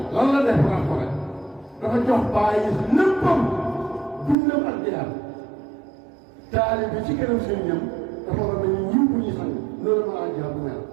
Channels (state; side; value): drops out; left; at 4.4 s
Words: lan la def rapport dafa jox bàyyi léppam dundam ak jihaad taalibe bi ci kanam sëriñam dafa war a mel ni ñiw bu ñuy sang loolu ma laa jihaad bu mel